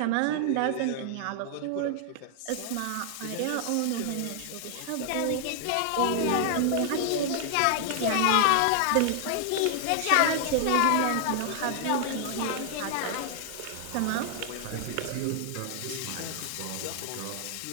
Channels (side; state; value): both; different; correlation 0.00